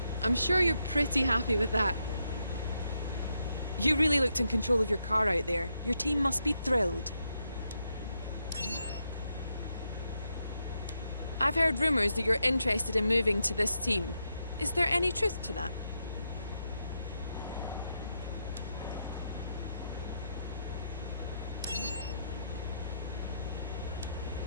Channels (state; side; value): inverted; both; correlation -0.82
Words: I'm sure you're pretty happy with that. You really looked in control of your car out there. Your team must be thrilled. I've heard rumours that you're interested in moving to this team. Is there any truth to that?